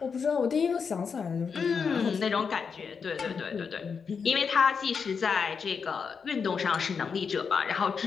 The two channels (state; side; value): quieter; right; 5.9 dB